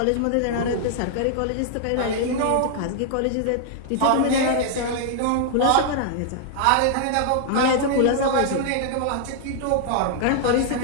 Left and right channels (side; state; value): both; different; correlation -0.01